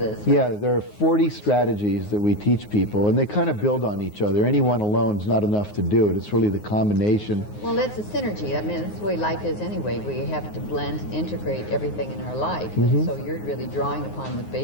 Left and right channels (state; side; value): late; right; 9.5 ms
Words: Yeah, there are 40 strategies that we teach people, and they kind of build on each other. Any one alone is not enough to do it. It's really the combination. Well, that's a synergy. I mean, that's the way life is anyway. We have to blend and integrate everything in our life. And so you're really drawing upon the